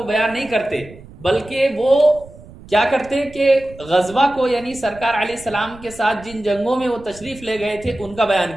بیان نہیں کرتے، بلکہ وہ کیا کرتے کہ غزوہ کو، یعنی سرکار علیہ السلام کے ساتھ جن جنگوں میں وہ تشریف لے گئے تھے ان کا بیان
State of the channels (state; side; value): noise; right; rumble, 19 dB below the sound